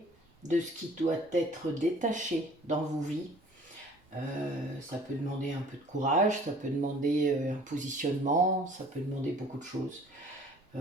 de ce qui doit être détaché dans vos vies. Ça peut demander un peu de courage, ça peut demander un positionnement, ça peut demander beaucoup de choses.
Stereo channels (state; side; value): normal; both; correlation 0.52